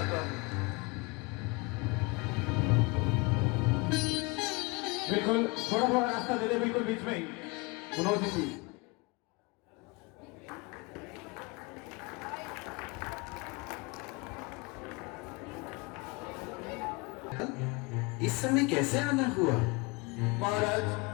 हूँ। बिल्कुल थोड़ा थोड़ा रास्ता दे दे, बिल्कुल बीच में ही मनोज जी। इस समय कैसे आना हुआ? महाराज,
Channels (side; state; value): right; quieter; 26.5 dB